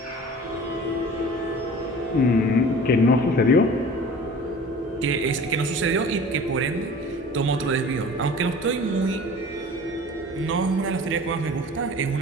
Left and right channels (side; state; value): both; normal; correlation 0.41